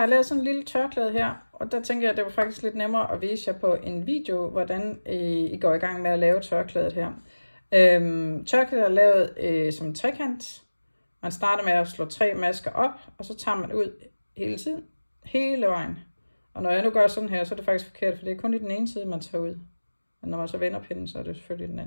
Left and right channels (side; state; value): both; inverted; correlation -1.00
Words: lavet sådan en lille tørklæde her, og der tænker jeg, at det var faktisk lidt nemmere at vise jer på en video, hvordan I går i gang med at lave tørklædet her. Tørklædet er lavet som en trekant. Man starter med at slå 3 masker op, og så tager man ud hele tiden, hele vejen. Og når jeg nu gør sådan her, så er det faktisk forkert, for det er kun i den ene side, man tager ud. Men når man så vender pinden, så er det selvfølgelig den